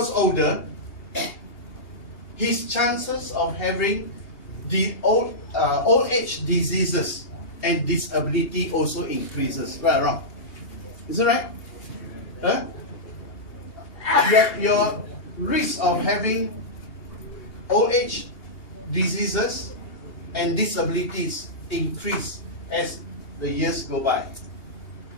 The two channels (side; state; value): right; late; 2.8 ms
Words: older, his chances of having the old age diseases and disability also increases. Right or wrong? Is it right? Huh? Your risk of having old age diseases and disabilities increase as the years go by.